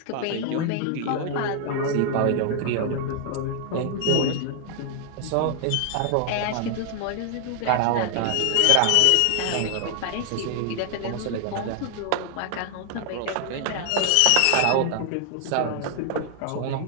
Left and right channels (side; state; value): both; different; correlation 0.00